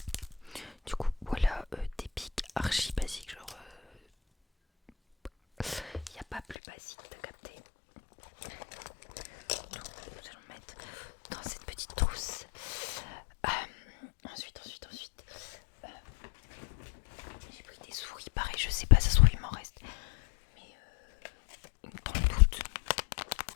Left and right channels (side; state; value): right; drops out; at 6.6 s